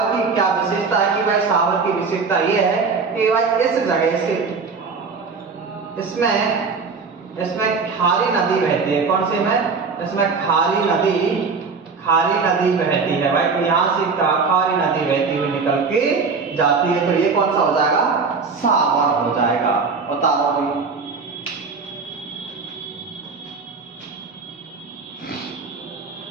की क्या विशेषता है कि भाई सावर की विशेषता ये है कि भाई इस जगह से इसमें खारी नदी बहती है। कौन सी में? इसमें खारी नदी बहती है भाई। तो यहाँ से खारी नदी बहती हुई निकल के जाती है। तो ये कौन सा हो जाएगा? सावर हो जाएगा। बता दो भाई।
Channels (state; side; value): quieter; left; 4.8 dB